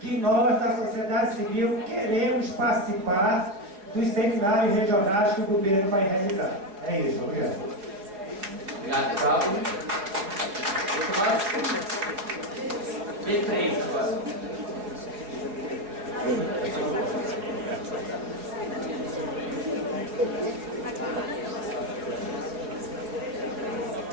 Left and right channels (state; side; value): late; left; 4.8 ms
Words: nós, da sociedade civil, queremos participar dos seminários regionais que o governo vai realizar. É isso, obrigado. Obrigado, Pablo. B3 agora.